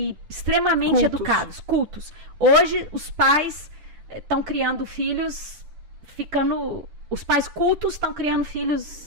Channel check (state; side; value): late; left; 10 ms